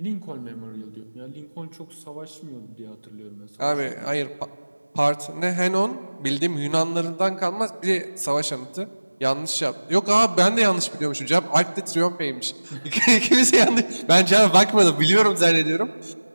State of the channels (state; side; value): inverted; both; correlation -1.00